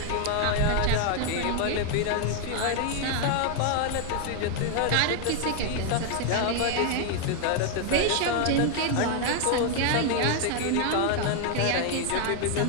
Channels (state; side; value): different; both; correlation 0.00